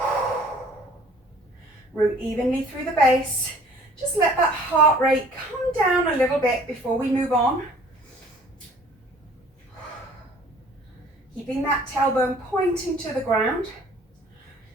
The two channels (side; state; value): both; normal; correlation 0.53